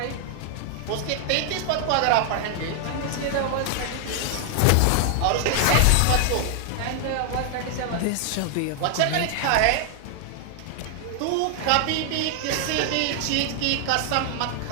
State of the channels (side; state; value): both; different; correlation 0.00